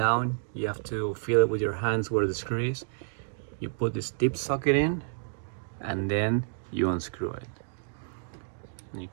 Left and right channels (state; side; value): silent; left; digital silence